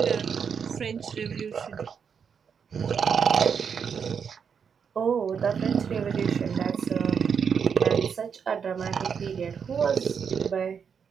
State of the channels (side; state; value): left; quieter; 6.8 dB